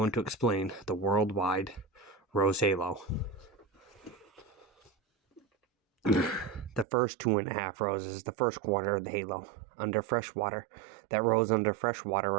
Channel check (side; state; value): left; drops out; at 6.9 s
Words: to explain the worldwide Rose Halo. The first 2.5 roses, the first quarter of the halo, under fresh water. That rose under fresh water